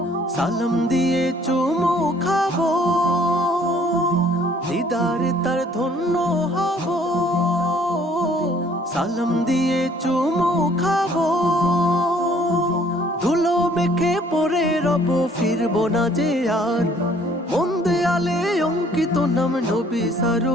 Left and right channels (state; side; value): normal; both; correlation 0.59